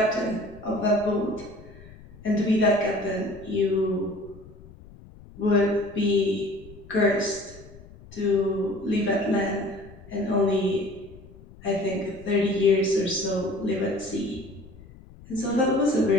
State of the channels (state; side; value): noise; left; rumble, 20 dB below the sound